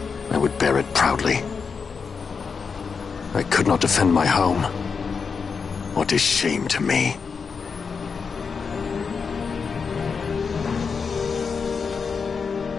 I would bear it proudly. I could not defend my home. What is shame to me?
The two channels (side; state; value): right; quieter; 5.5 dB